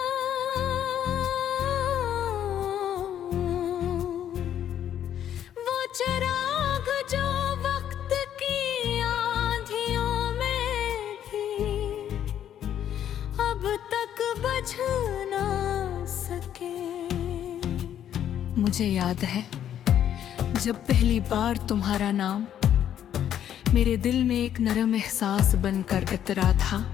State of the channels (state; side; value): quieter; right; 10.2 dB